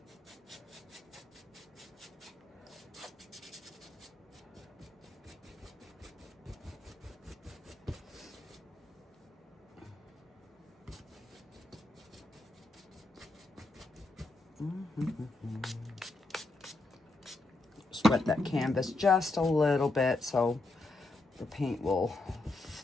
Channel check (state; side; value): quieter; right; 3.0 dB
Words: Just wet that canvas just a little bit so the paint will